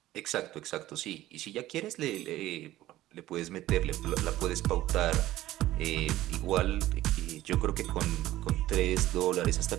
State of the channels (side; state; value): left; quieter; 15.2 dB